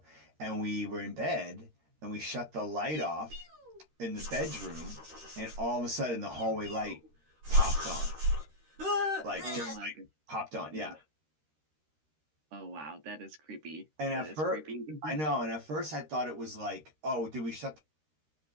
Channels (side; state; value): left; late; 13 ms